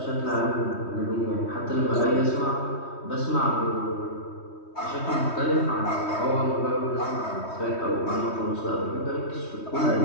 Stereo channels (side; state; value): right; late; 3.2 ms